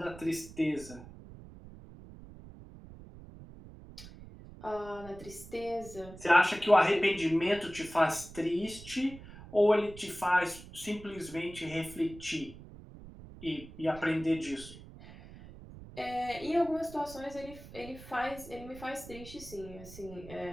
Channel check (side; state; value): right; noise; rumble, 16 dB below the sound